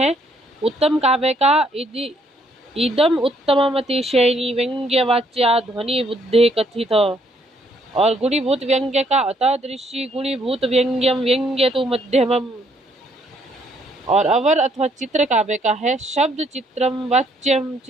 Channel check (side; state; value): both; normal; correlation 0.68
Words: उत्तम काव्य का इदम उत्तममतिशयनी व्यंग्यवाच्या ध्वनि बुद्धे कथित, और गुणीभूत व्यंग्य का अतादृशी गुणीभूत व्यंग्यम व्यंग्य तो मध्यमम। और अवर अथवा चित्र काव्य का है शब्द चित्रम वाच्यम